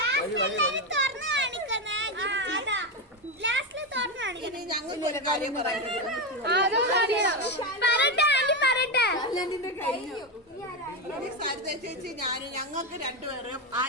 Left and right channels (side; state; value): both; normal; correlation 0.11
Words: ഇനി ഞങ്ങൾക്ക് ഒരു കാര്യം പറയാനുണ്ട്. സരിത ചേച്ചി ഞാനും ഞങ്ങൾക്ക് രണ്ടുപേരും